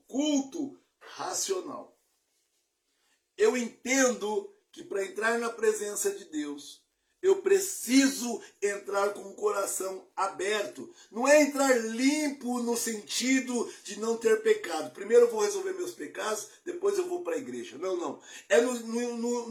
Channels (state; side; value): identical; both; correlation 1.00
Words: culto racional. Eu entendo que para entrar na presença de Deus, Eu preciso entrar com o coração aberto. Não é entrar limpo no sentido de não ter pecado. Primeiro eu vou resolver meus pecados, depois eu vou para a igreja. Não, não. É